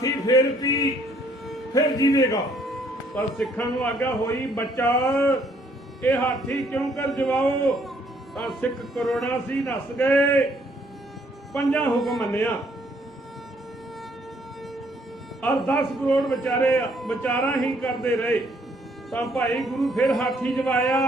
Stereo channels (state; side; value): normal; both; correlation 0.66